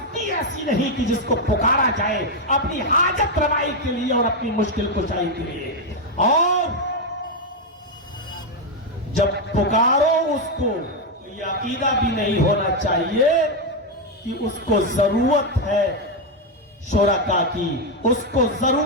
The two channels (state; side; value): normal; both; correlation 0.04